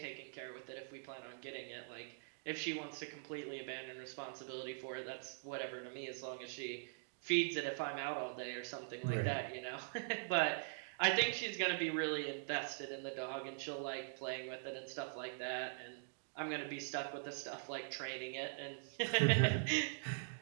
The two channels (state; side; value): silent; left; digital silence